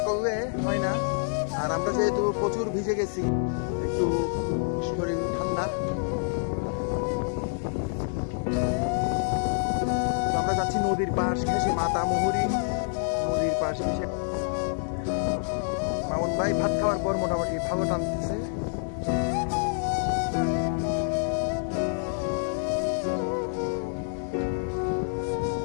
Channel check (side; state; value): right; silent; digital silence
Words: করলে হয় না। আর আমরা যেহেতু প্রচুর ভিজে গেছি, একটু শরীর ঠান্ডা। আমরা যাচ্ছি নদীর পাশ ঘেঁষে, মাতামুহুরী নদীর পাশ ঘেঁষে। মামুন ভাই ভাত খাওয়ার পর মোটামুটি ভালো টানতেছে।